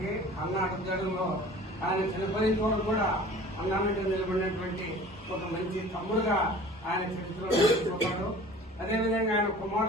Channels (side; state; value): both; normal; correlation 0.44